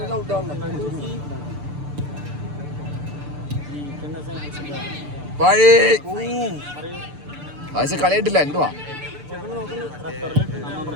ഫായിസ് കളിയായിട്ടില്ല. എന്തുവാ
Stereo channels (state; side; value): late; left; 6.8 ms